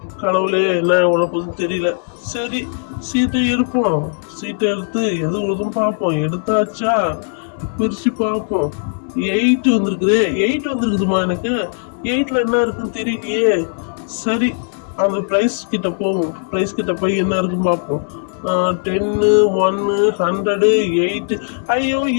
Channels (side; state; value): right; silent; 67 dB below the other